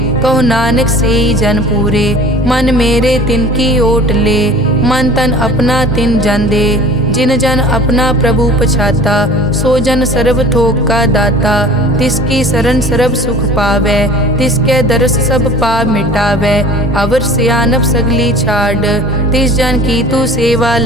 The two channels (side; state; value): both; normal; correlation 0.44